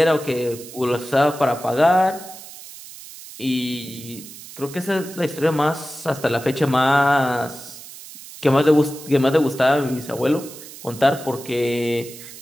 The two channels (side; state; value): right; noise; hiss, 16 dB below the sound